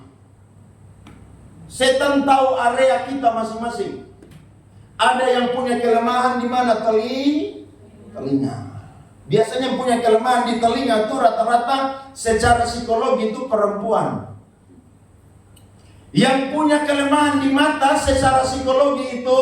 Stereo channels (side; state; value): both; identical; correlation 1.00